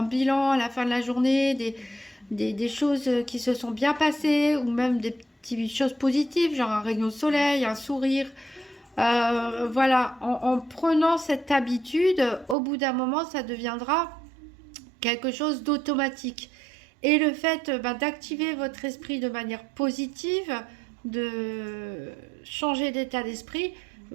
bilan à la fin de la journée, des choses qui se sont bien passées, ou même des petites choses positives, genre un rayon de soleil, un sourire, voilà, en prenant cette habitude, au bout d'un moment, ça deviendra quelque chose d'automatique. Et le fait d'activer votre esprit de manière positive, de changer d'état d'esprit,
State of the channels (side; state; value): left; drops out; at 12.6 s